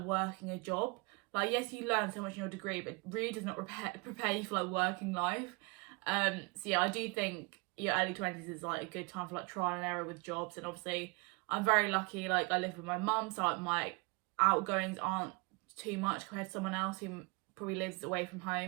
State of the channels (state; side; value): quieter; left; 28.9 dB